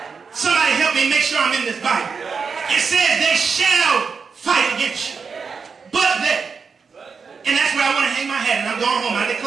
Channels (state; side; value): quieter; left; 5.5 dB